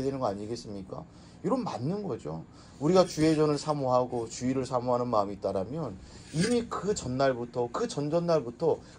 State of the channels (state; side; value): identical; both; correlation 1.00